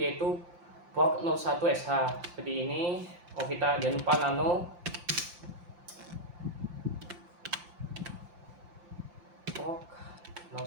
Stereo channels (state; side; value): late; left; 5.7 ms